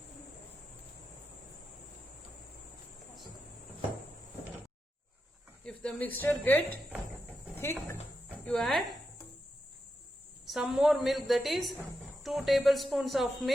If the mixture gets thick, you add some more milk, that is 2 tablespoons of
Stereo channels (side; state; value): both; normal; correlation 0.87